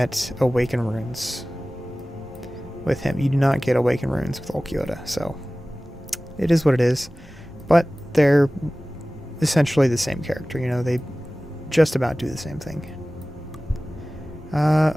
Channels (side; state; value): both; normal; correlation 0.98